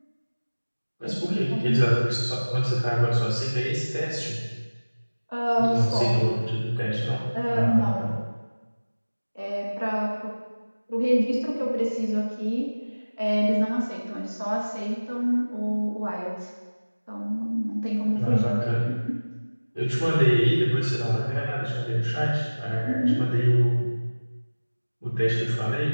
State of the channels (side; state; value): both; inverted; correlation -1.00